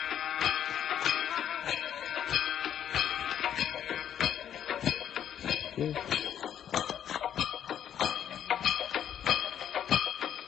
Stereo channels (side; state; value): right; quieter; 9.7 dB